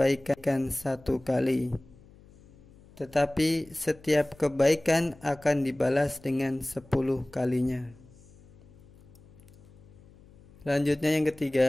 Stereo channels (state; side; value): noise; left; hum, 25 dB below the sound